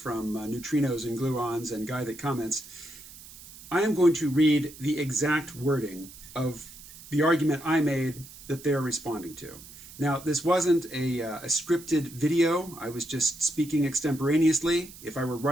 Neutrinos and Gluons and Guy That Comments, I am going to read the exact wording of the argument I made that they're responding to. Now, this wasn't a scripted video. I was just speaking extemporaneously. If I were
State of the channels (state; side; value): noise; right; hiss, 18 dB below the sound